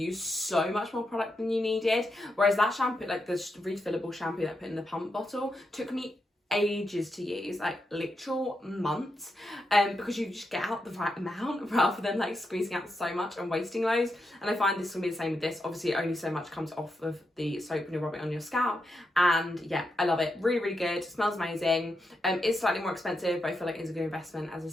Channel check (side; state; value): both; normal; correlation 0.85